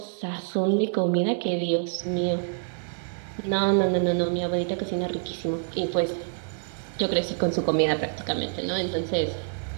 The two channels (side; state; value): left; silent; digital silence